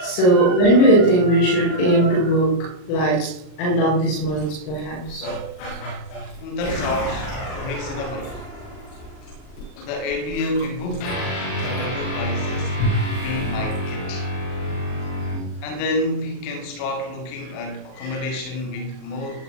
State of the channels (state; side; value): late; right; 39 ms